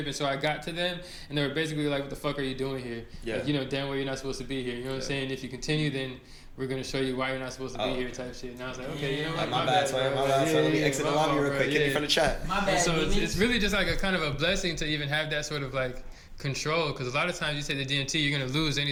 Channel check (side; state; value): both; identical; correlation 1.00